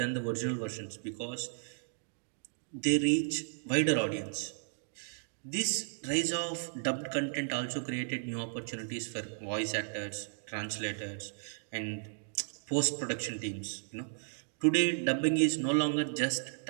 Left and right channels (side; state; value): left; silent; digital silence